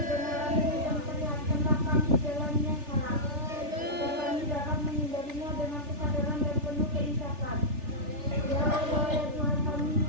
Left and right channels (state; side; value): late; left; 3.4 ms